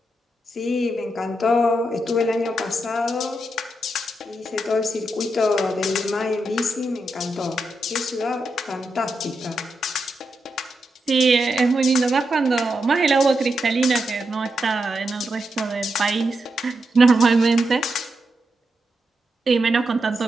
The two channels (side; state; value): both; normal; correlation 0.85